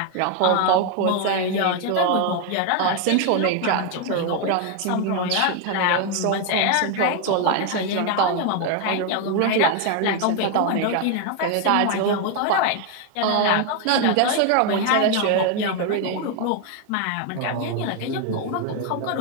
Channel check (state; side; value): different; both; correlation 0.01